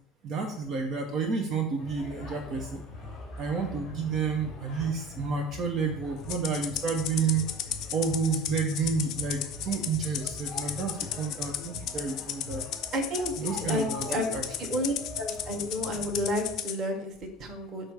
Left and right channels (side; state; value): both; normal; correlation 0.39